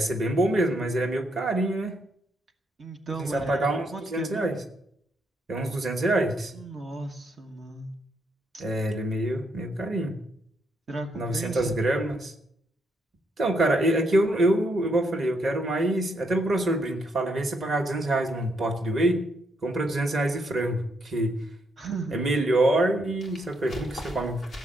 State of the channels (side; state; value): both; normal; correlation 0.76